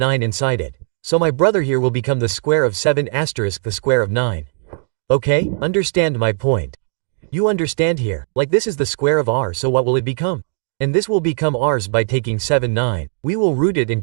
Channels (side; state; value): left; silent; 59 dB below the other